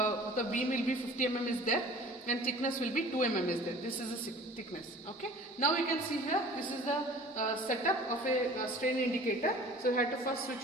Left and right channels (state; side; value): normal; both; correlation 0.46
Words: beam will be 50 mm is there, and thickness will be 2 mm is there. This is the thickness. Okay, now you can see here, this is the setup of a strain indicator. So you have to first switch